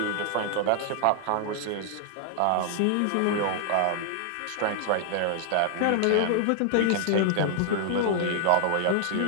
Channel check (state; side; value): different; both; correlation 0.00